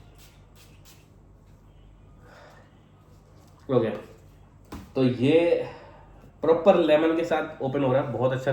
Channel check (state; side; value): identical; both; correlation 1.00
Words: ओके, तो ये प्रॉपर लेमन के साथ ओपन हो रहा है, बहुत अच्छा